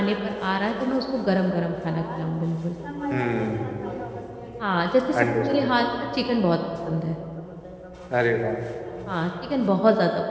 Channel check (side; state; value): both; identical; correlation 1.00